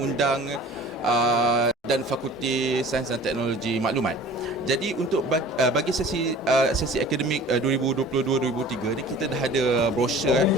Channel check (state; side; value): normal; both; correlation 0.44